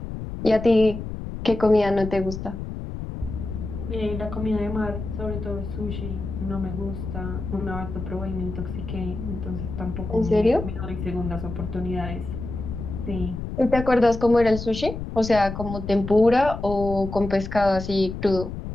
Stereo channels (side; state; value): left; noise; rumble, 7 dB below the sound